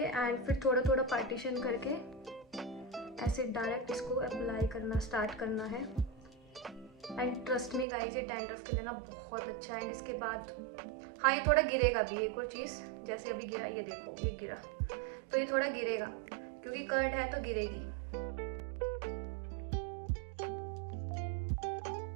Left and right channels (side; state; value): left; drops out; at 7.9 s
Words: फिर थोड़ा थोड़ा पार्टीशन करके ऐसे डायरेक्ट इसको अप्लाई करना स्टार्ट करना है। एंड ट्रस्ट मी गाइस, ये डैंड्रफ के लिए ना बहुत अच्छा है। एंड इसके बाद हाँ, ये थोड़ा गिरेगा भी। एक और चीज़, जैसे अभी गिरा, ये देखो ये गिरा, तो ये थोड़ा गिरेगा क्योंकि कर्ड है तो गिरेगी।